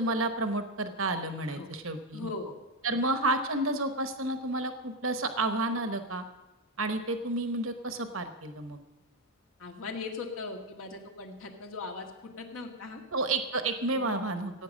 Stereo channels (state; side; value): normal; both; correlation 0.07